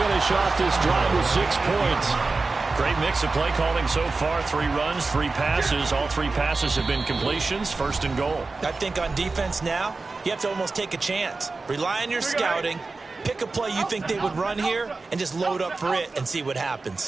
off this drive with 6 points. Great mix of play calling so far. 3 runs, 3 passes. All 3 passes have been completions. 1st and goal. I think on defense now, you have to almost take a chance. Rely on your scouting. Pick a play you think they would run here and just load up for it and see what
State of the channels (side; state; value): left; quieter; 3.8 dB